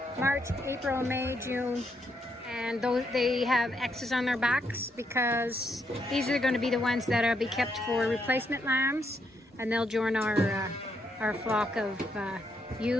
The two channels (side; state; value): both; normal; correlation 0.77